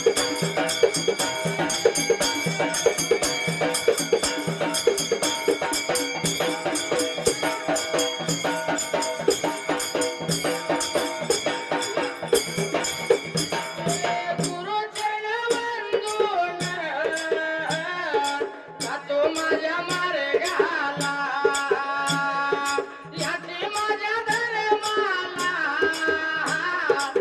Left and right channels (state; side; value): identical; both; correlation 1.00